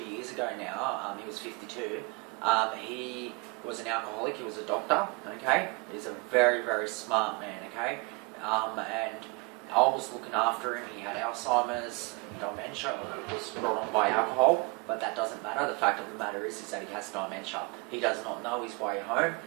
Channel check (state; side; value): quieter; left; 27.5 dB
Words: ago now. He was 52. He was an alcoholic. He was a doctor. Okay, he's a very, very smart man. Okay, and I was looking after him. He had Alzheimer's, dementia. It was brought on by alcohol, but that doesn't matter. The fact of the matter is that he has dementia. He does not know his way home.